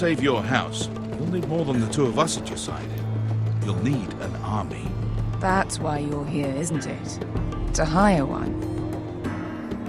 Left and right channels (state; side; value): identical; both; correlation 1.00